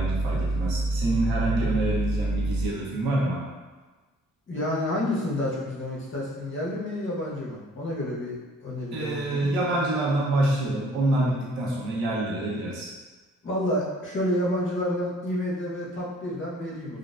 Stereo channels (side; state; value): both; normal; correlation 0.62